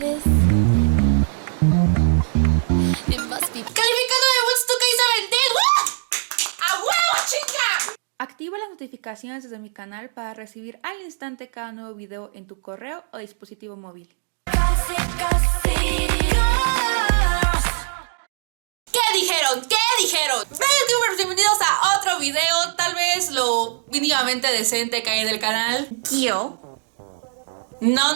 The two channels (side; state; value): left; silent; digital silence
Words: is? It must be... ¡Calificando de Woodstock Isabel! ¡A huevo, chica! Activa las notificaciones desde mi canal para recibir al instante cada nuevo video en tu correo o dispositivo móvil. ¿Qué dijeron? ¿Qué dijeron? Bienvenidos a otro video, tal vez lo mínimamente decente que hay en el canal.